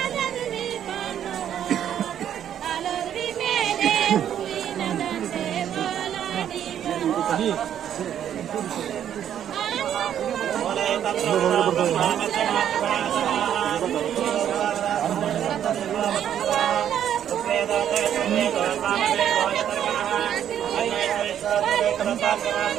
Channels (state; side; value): quieter; left; 9.9 dB